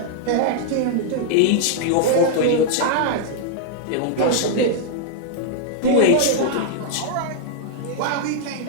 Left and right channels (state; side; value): different; both; correlation -0.01